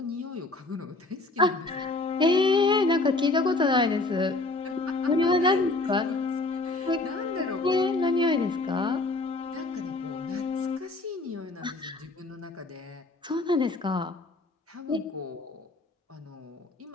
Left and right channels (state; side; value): quieter; right; 3.1 dB